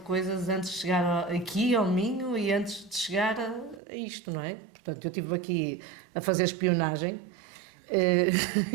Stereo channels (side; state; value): left; drops out; at 3.8 s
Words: antes de chegar aqui ao Minho e antes de chegar a isto, não é? Portanto, eu estive aqui a fazer espionagem,